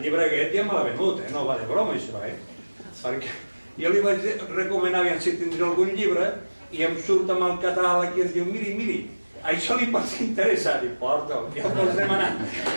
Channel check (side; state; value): both; inverted; correlation -1.00